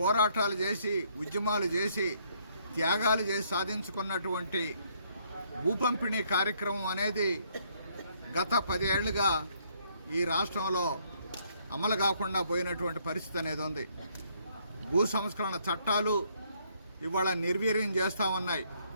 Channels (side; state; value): both; inverted; correlation -0.68